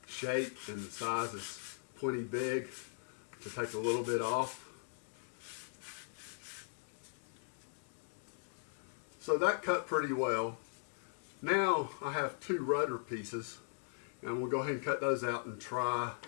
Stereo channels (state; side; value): silent; right; digital silence